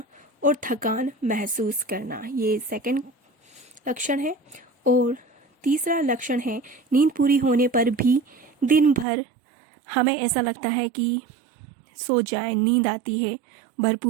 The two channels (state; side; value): drops out; left; at 9.1 s